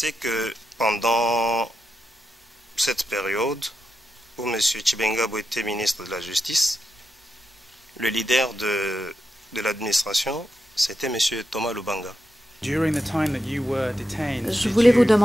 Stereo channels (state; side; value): normal; both; correlation 0.87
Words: que pendant cette période où M. Tshibengabo était ministre de la Justice, le leader de l'administration, c'était M. Thomas Lubanga. Je voulais vous